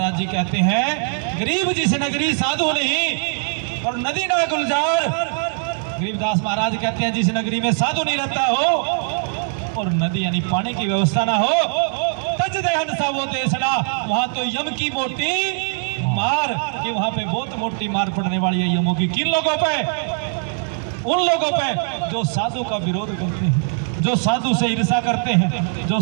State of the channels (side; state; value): left; silent; 59 dB below the other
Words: जी कहते हैं, गरीब जिस नगरी साधु नहीं और नदी ना गुलजार। गरीबदास महाराज कहते हैं जिस नगरी में साधु नहीं रहता हो और नदी यानी पानी की व्यवस्था ना हो, तज दहन सा वो देशना, वहां तो यम की मोटी मार, कि वहां पे बहुत मोटी मार पड़ने वाली है यमों की। किन लोगों पे? उन लोगों पे जो साधु का विरोध करते हैं, जो साधु से ईर्षा करते हैं, जो